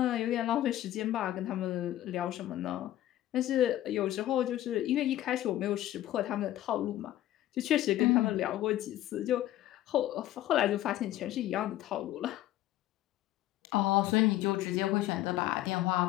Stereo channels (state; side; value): quieter; right; 13.9 dB